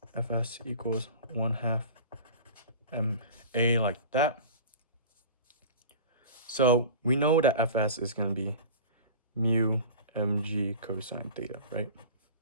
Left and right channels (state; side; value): inverted; both; correlation -0.37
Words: Fs equals 1/2 ma like that. So we know that Fs is going to be mu mg cosine theta, right?